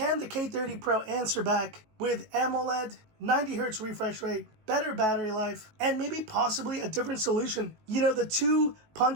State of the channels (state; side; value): late; left; 19 ms